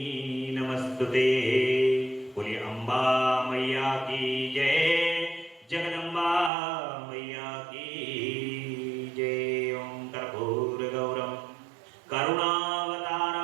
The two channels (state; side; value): drops out; left; at 6.5 s